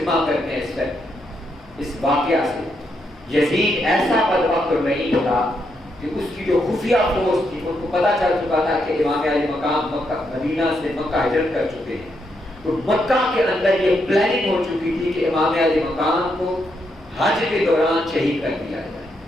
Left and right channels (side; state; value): right; noise; hum, 27 dB below the sound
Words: کرتے ہیں اس واقعہ سے, یزید ایسا بدبخت نہیں تھا کہ اس کی جو خفیہ فورس تھی ان کو پتہ چل چکا تھا کہ امام علی مقام مدینہ سے مکہ ہجرت کر چکے ہیں. تو مکہ کے اندر یہ پلاننگ ہو چکی تھی کہ امام علی مقام کو حج کے دوران شہید کر دیا جائے,